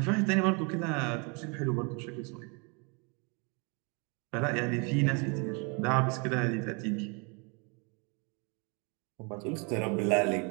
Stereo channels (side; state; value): left; quieter; 32.8 dB